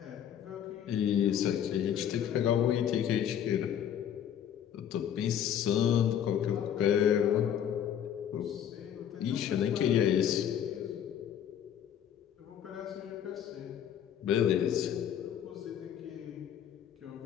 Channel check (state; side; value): quieter; right; 9.6 dB